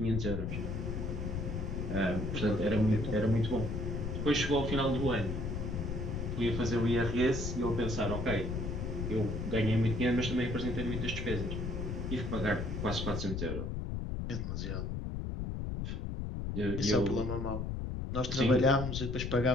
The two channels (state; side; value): noise; left; rumble, 3 dB below the sound